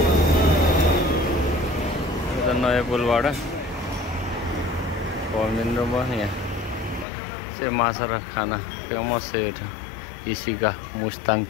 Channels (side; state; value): right; drops out; at 7.1 s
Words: नयाँ पुलबाट पमिन्द्र भयो यहाँ चाहिँ माछा र खाना फेमस छ यो इसी का मुस्ताङ